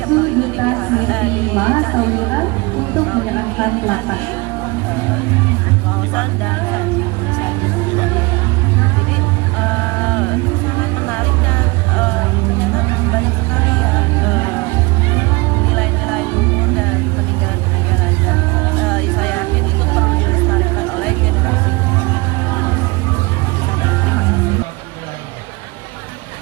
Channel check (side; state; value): left; quieter; 25.5 dB